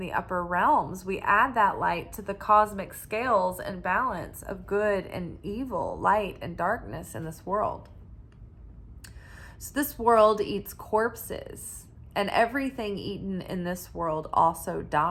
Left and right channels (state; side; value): identical; both; correlation 1.00